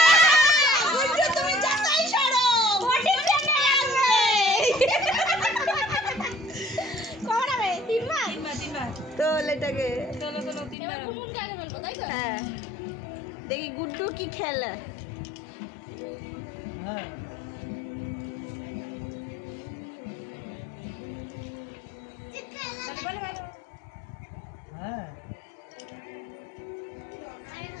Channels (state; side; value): drops out; right; at 10.8 s